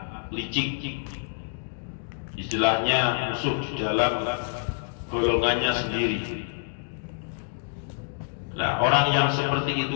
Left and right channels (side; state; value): right; silent; digital silence